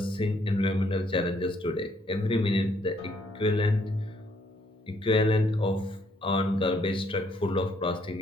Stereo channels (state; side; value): normal; both; correlation 0.68